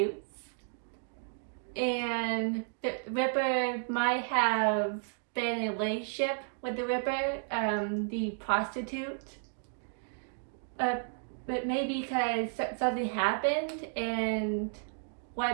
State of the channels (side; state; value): left; silent; digital silence